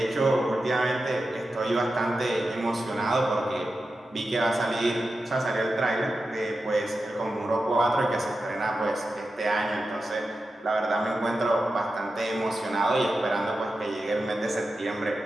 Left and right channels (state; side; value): normal; both; correlation 0.91